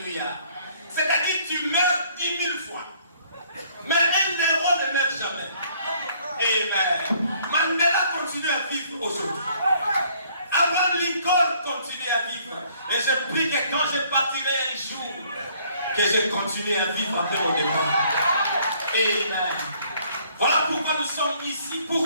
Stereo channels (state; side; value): inverted; both; correlation -0.62